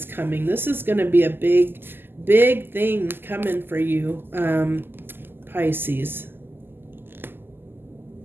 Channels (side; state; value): left; late; 0.098 ms